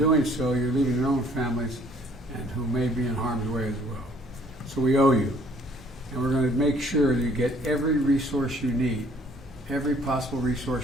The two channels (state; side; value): normal; both; correlation 0.60